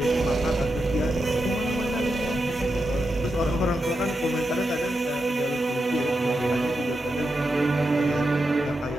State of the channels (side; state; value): both; normal; correlation 0.87